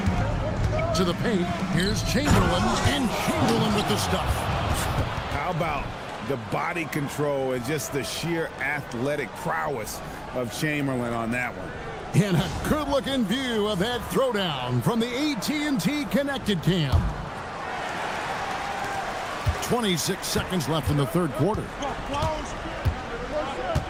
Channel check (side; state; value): both; identical; correlation 1.00